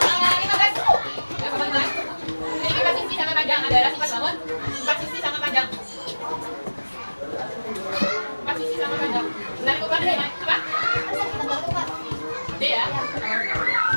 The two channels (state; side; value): inverted; both; correlation -1.00